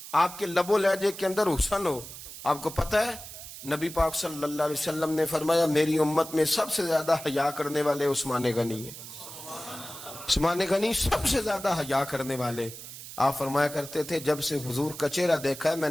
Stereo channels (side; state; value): right; noise; hiss, 13 dB below the sound